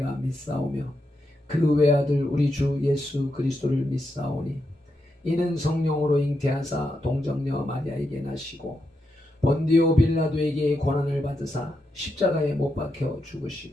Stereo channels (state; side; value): normal; both; correlation 0.84